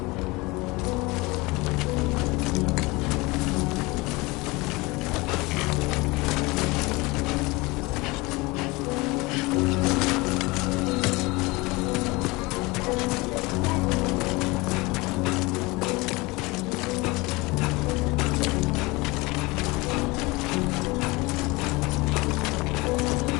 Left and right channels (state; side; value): quieter; right; 23.8 dB